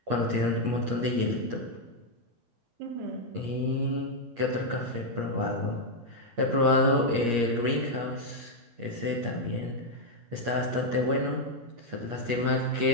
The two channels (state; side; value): late; left; 8.5 ms